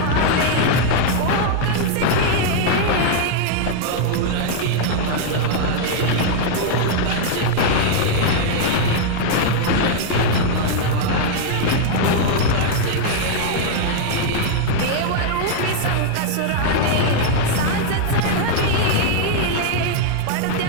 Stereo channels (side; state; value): both; different; correlation 0.00